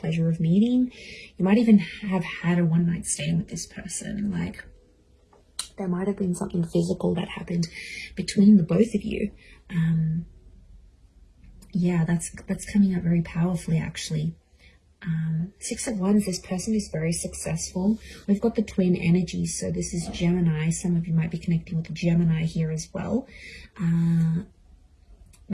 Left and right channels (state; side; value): identical; both; correlation 1.00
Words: of meeting. You might even have had a one-night stand with this person. Like, there might have been something physical that happened between the both of you. Yeah, that's coming up very powerfully, actually. 6 of Wands, this person is very successful. We've got the twin energy, so this is Gemini. Some of you might be connecting with the Gemini here as well.